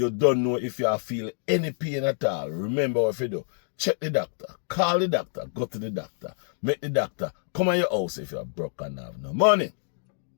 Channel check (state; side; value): silent; right; digital silence